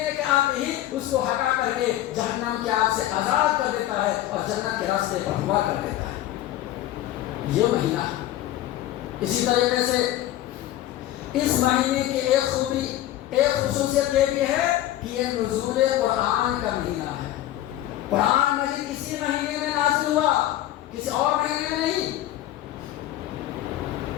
کے آتے ہی اس کو ہٹا کر کے جہنم کی آگ سے آزاد کر دیتا ہے اور جنت کے راستے پر ہوا کر دیتا ہے۔ یہ مہینہ اسی طریقے سے اس مہینے کی ایک خوبی، ایک خصوصیت یہ بھی ہے کہ یہ نزول قرآن کا مہینہ ہے۔ قرآن مجید کسی مہینے میں نازل ہوا، کسی اور مہینے میں نہیں۔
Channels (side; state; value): right; quieter; 13.8 dB